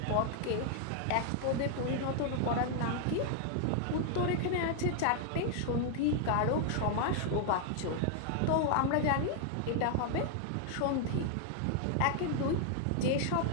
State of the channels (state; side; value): different; both; correlation 0.00